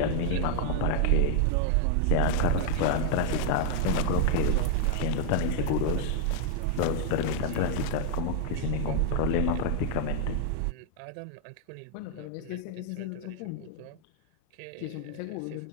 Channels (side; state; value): both; different; correlation 0.00